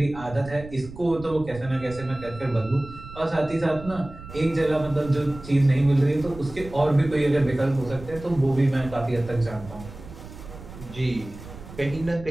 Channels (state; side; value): noise; right; rumble, 15 dB below the sound